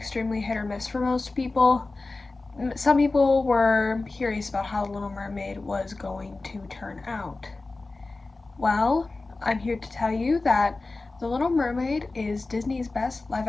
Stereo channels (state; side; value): quieter; right; 3.4 dB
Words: hit or miss for most people. Some people were curious about how Little Mermaid was going to turn out. Well, I'm here to tell you that The Little Mermaid is Disney's best live